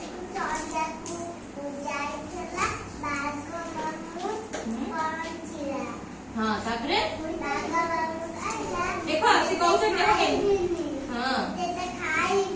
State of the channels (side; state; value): both; identical; correlation 1.00